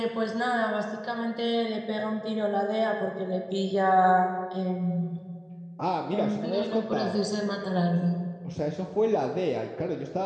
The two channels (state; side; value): identical; both; correlation 1.00